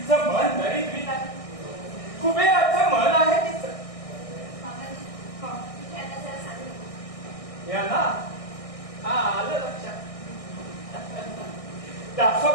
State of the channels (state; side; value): late; right; 1.6 ms